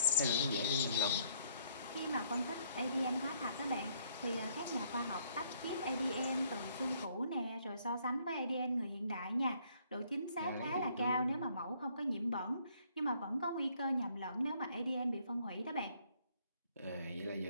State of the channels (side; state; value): both; inverted; correlation -0.65